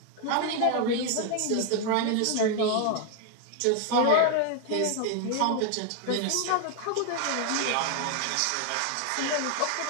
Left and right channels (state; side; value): different; both; correlation 0.00